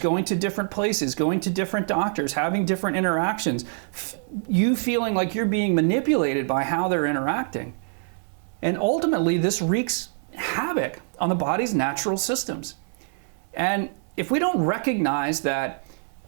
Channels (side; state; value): left; silent; 58 dB below the other